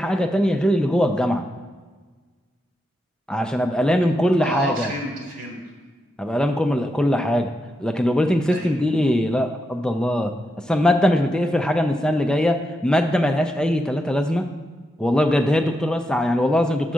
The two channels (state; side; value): normal; both; correlation 0.85